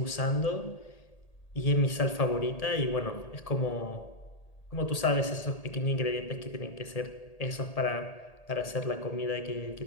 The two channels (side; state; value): right; late; 1.8 ms